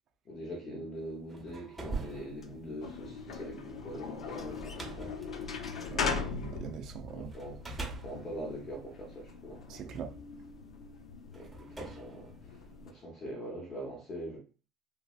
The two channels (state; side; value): normal; both; correlation 0.40